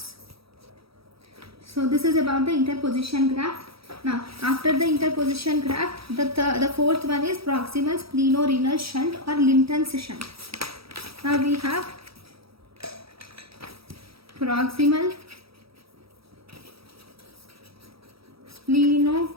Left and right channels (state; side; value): late; left; 0.76 ms